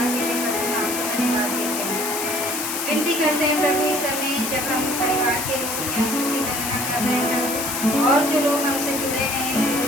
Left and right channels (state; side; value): noise; left; hiss, 3 dB below the sound